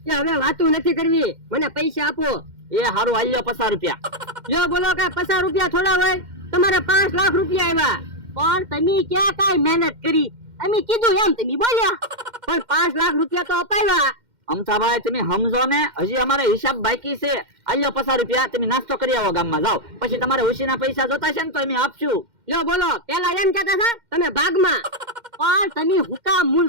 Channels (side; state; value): left; late; 2.1 ms